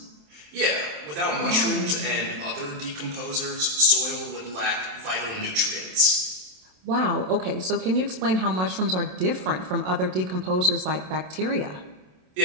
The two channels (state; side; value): late; left; 27 ms